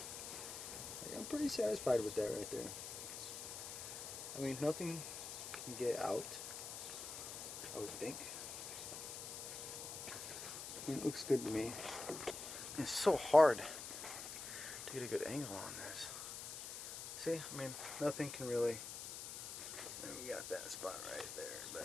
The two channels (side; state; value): left; noise; hiss, 7 dB below the sound